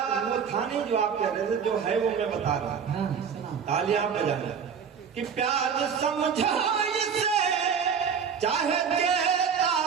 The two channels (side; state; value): left; quieter; 6.9 dB